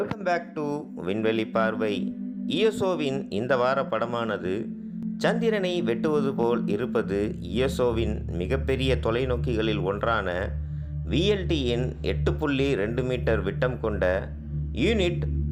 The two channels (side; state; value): both; identical; correlation 1.00